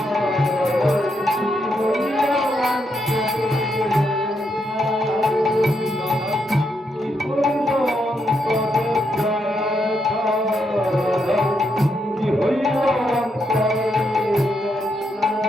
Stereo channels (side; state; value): both; normal; correlation 0.79